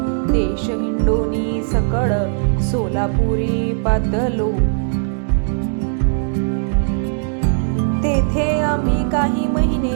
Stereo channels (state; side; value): silent; left; digital silence